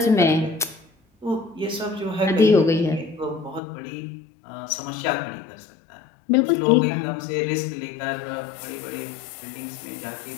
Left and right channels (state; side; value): drops out; right; at 3.6 s